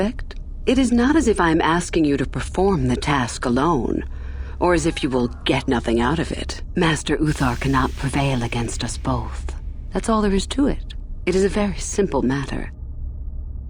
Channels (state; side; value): identical; both; correlation 1.00